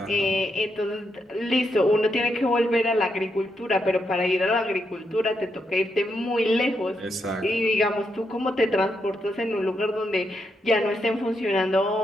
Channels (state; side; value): normal; both; correlation 0.81